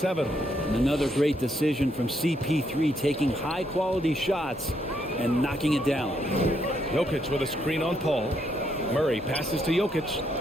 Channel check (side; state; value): both; normal; correlation 0.75